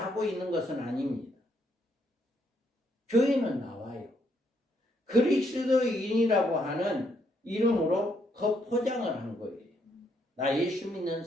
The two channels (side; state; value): both; normal; correlation 0.73